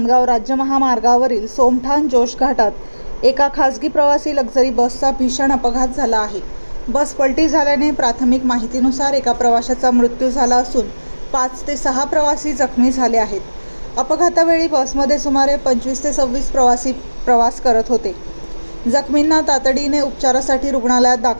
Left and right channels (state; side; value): inverted; both; correlation -1.00